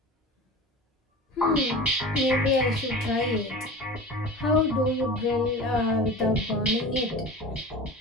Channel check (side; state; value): both; normal; correlation 0.35